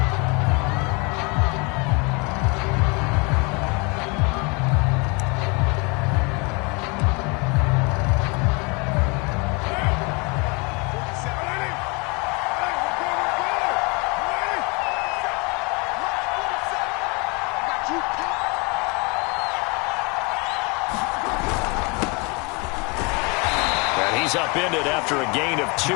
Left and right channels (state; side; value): quieter; right; 30.2 dB